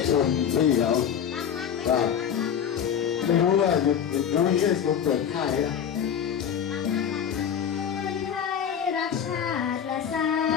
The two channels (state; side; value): quieter; right; 8.4 dB